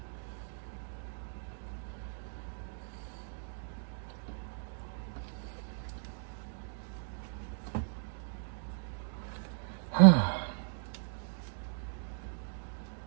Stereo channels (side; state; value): left; silent; digital silence